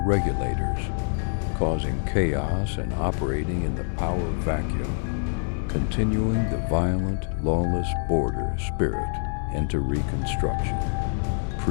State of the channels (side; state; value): right; silent; digital silence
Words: causing chaos and operating in the power vacuum, continuing the violent, lawless border spirit into Reconstruction.